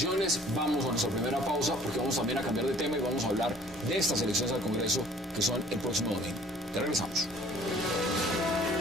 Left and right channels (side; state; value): both; normal; correlation 0.53